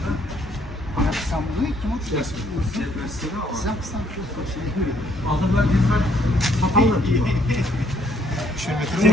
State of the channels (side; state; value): both; normal; correlation 0.67